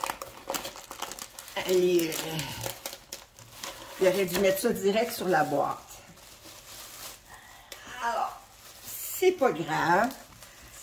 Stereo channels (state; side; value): identical; both; correlation 1.00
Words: il aurait dû mettre ça direct sur la boîte. Alors, c'est pas grave.